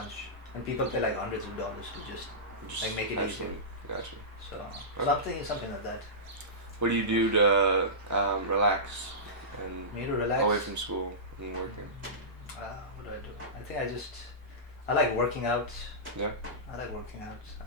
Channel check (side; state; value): both; normal; correlation -0.19